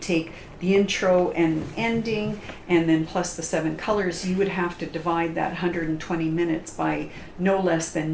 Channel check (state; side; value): identical; both; correlation 1.00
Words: the intro and ending and then plus the 7 colors, you would have to divide that 120 minutes by no less